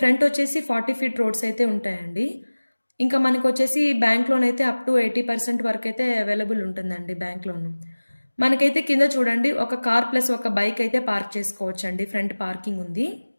వచ్చేసి 40 ఫీట్ రోడ్స్ అయితే ఉంటాయండి. ఇంకా మనకు వచ్చేసి బ్యాంక్ లోన్ అయితే అప్ టు 80% వరకు అయితే అవైలబుల్ ఉంటుందండి బ్యాంక్ లోన్. మనకైతే కింద చూడండి ఒక కార్ ప్లస్ ఒక బైక్ అయితే పార్క్ చేసుకోవచ్చు అండి. ఫ్రంట్ పార్కింగ్ ఉంది.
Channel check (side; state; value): both; inverted; correlation -1.00